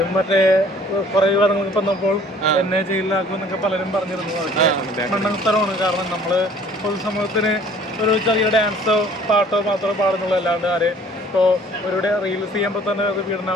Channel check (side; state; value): both; normal; correlation 0.53